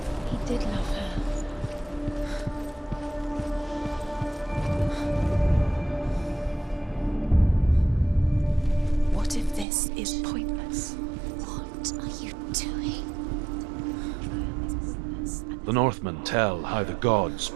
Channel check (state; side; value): drops out; left; at 9.7 s